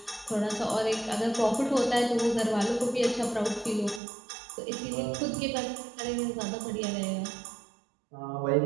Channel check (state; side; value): drops out; left; at 4.0 s